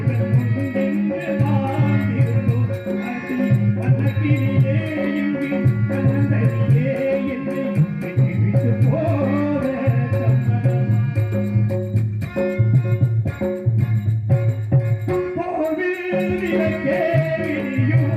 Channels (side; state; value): both; identical; correlation 1.00